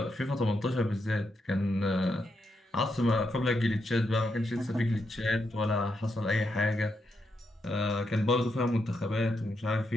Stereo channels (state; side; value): normal; both; correlation 0.82